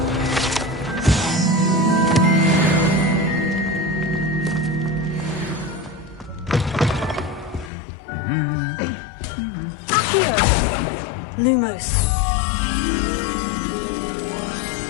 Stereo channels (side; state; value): right; drops out; at 7.7 s